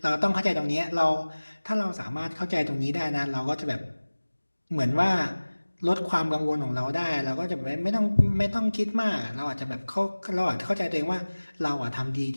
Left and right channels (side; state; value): both; inverted; correlation -1.00